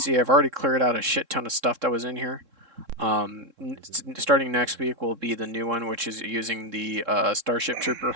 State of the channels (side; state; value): left; late; 3.7 ms